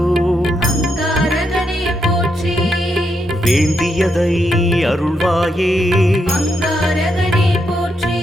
அங்காரகனே போற்றி வேண்டியதை அருள்வாயே அங்காரகனே போற்றி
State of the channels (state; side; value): normal; both; correlation 0.80